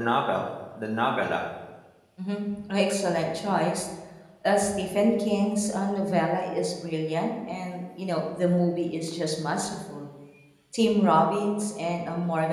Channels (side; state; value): both; identical; correlation 1.00